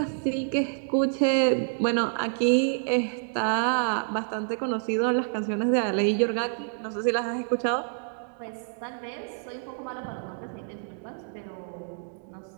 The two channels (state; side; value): silent; left; digital silence